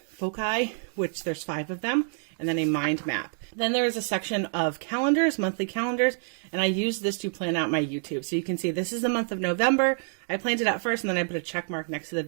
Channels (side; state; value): left; silent; 60 dB below the other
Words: which there's 5 of them, and then a mind map. Then there is a section of calendars, monthly calendars, and I use this to plan out my YouTube. So you can see this is the month of November. I planned it out first, and then I put a check mark next to